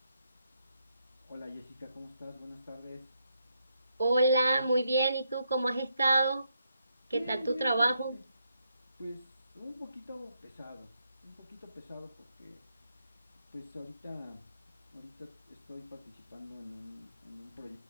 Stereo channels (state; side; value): inverted; both; correlation -0.79